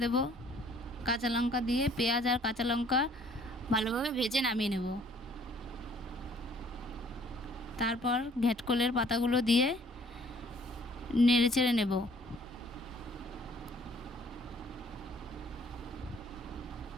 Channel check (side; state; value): both; normal; correlation 0.58